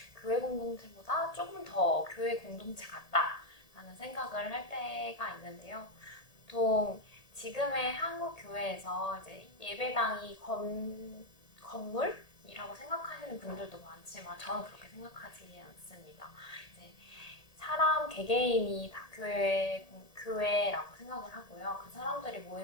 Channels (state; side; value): late; right; 1.8 ms